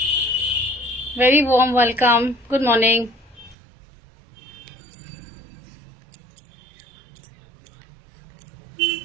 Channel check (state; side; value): drops out; left; at 3.6 s